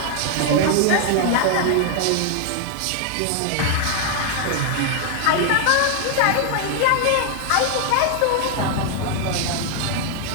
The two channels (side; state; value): both; different; correlation 0.00